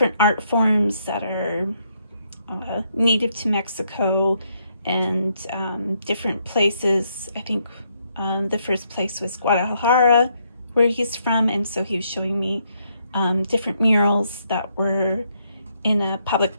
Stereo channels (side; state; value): both; inverted; correlation -0.75